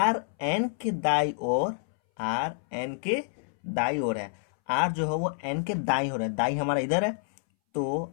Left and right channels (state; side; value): silent; right; 59 dB below the other